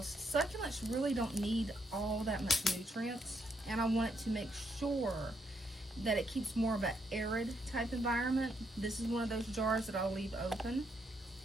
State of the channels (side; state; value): both; normal; correlation 0.76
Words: succulents really don't need all that much nutrients. And I want it to make sure that it keeps more of an arid type environment. This is one of those jars that I'll leave open.